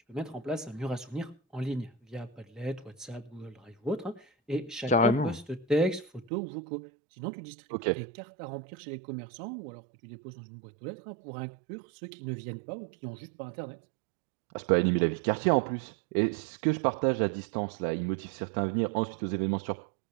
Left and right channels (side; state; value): left; drops out; at 6.3 s